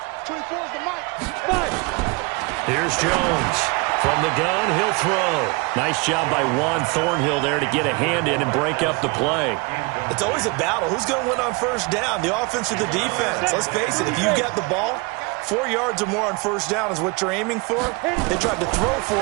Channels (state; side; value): quieter; left; 27.5 dB